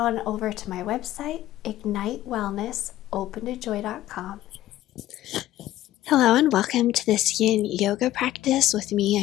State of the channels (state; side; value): quieter; right; 14.4 dB